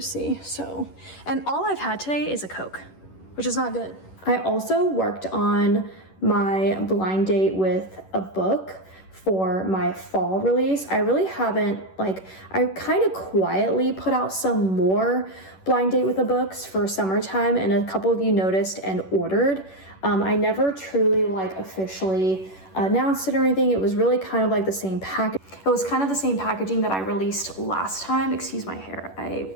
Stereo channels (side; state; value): right; late; 11 ms